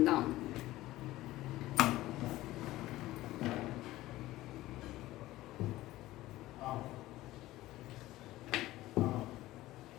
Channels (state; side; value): quieter; right; 16.7 dB